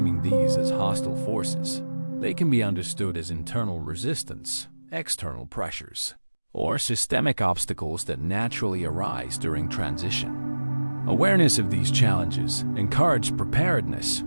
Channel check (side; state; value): both; inverted; correlation -1.00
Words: these as hostile forces, they can be understood as internal resistance, external pressures, or systemic obstacles that naturally arise during transition. Awareness of these challenges encourages preparedness